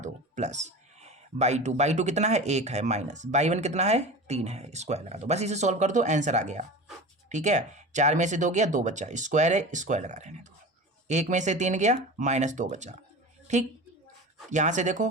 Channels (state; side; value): normal; both; correlation 0.32